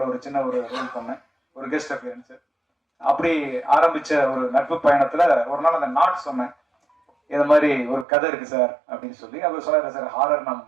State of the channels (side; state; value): left; drops out; at 8.1 s